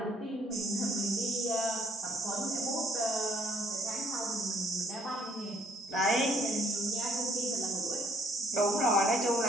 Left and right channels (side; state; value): both; normal; correlation 0.64